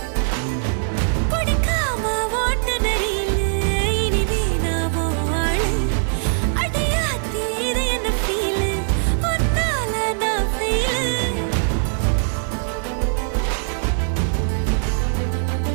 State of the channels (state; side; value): silent; left; digital silence